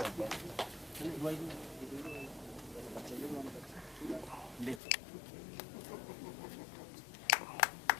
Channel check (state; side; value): drops out; right; at 4.8 s